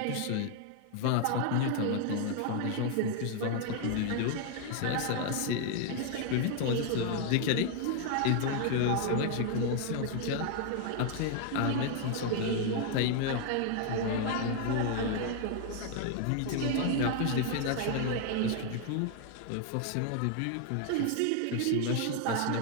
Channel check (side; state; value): both; different; correlation 0.00